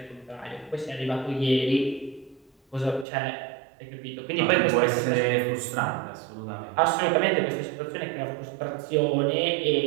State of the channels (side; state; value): left; drops out; at 3.1 s